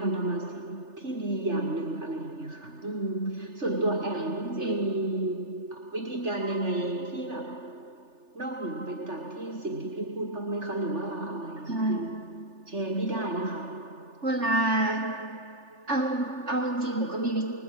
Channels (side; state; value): left; late; 3.4 ms